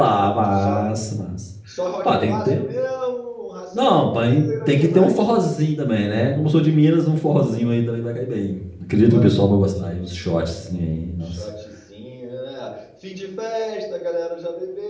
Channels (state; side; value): identical; both; correlation 1.00